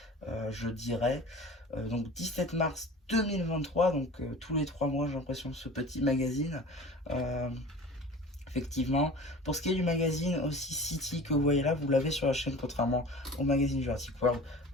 je dirais. Donc 17 mars 2023, donc tous les 3 mois j'ai l'impression ce petit magazine. Effectivement, pour ce qui est du magazine aussi City que vous voyez là, vous l'avez sur la chaîne contrairement au magazine Jurassic World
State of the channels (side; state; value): both; normal; correlation 0.39